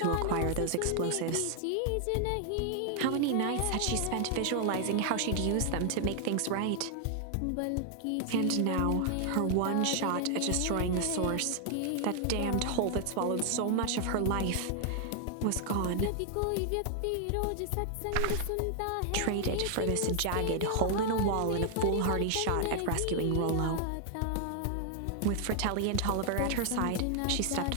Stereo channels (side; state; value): both; different; correlation 0.00